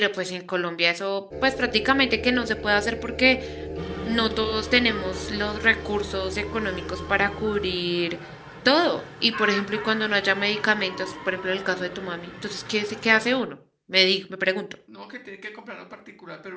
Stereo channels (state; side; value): identical; both; correlation 1.00